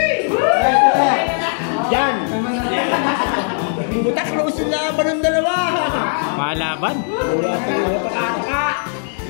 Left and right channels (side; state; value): right; silent; digital silence